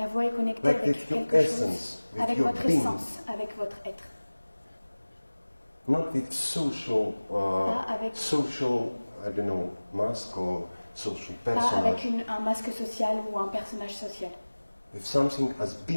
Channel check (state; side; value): inverted; both; correlation -1.00